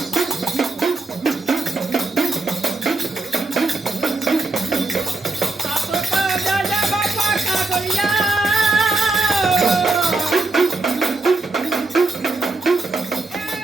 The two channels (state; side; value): quieter; left; 3.2 dB